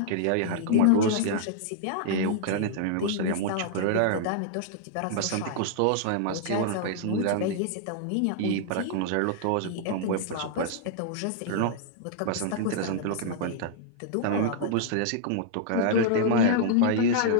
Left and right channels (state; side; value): different; both; correlation -0.01